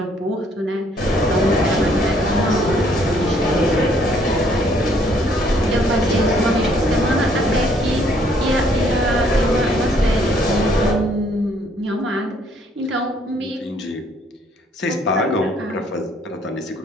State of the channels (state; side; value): normal; both; correlation 0.65